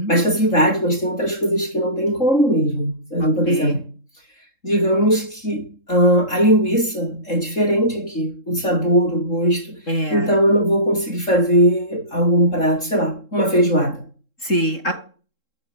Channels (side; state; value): right; late; 3.7 ms